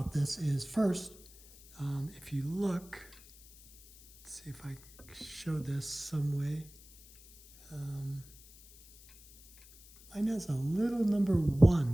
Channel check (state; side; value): noise; left; hiss, 22 dB below the sound